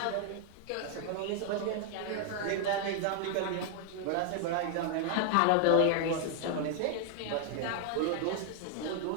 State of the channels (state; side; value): different; both; correlation 0.00